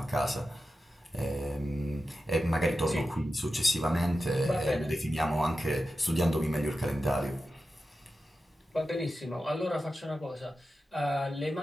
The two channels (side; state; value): both; normal; correlation 0.92